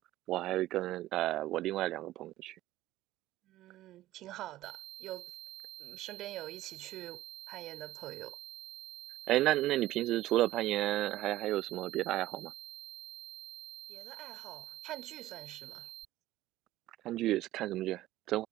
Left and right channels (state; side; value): quieter; left; 15.3 dB